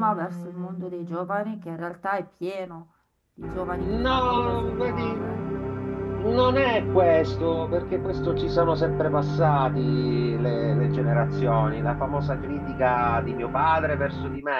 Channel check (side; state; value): both; identical; correlation 1.00